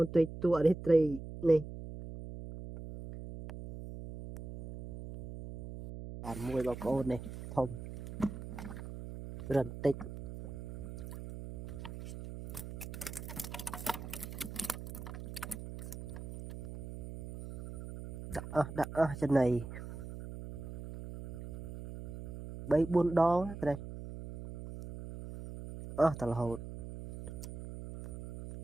tây tua đấy tray này bạn mùi bọc ôn này thông rần tích đã chân này bấy buôn đó cái đây thật là hột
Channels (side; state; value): right; noise; hum, 10 dB below the sound